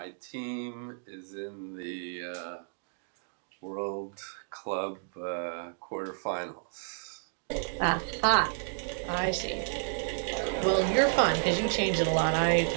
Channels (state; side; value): silent; left; digital silence